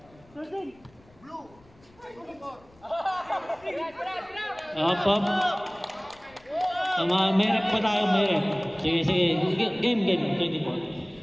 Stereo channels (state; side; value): noise; left; rumble, 28 dB below the sound